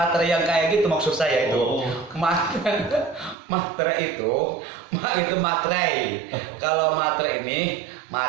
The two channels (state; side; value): drops out; left; at 3.4 s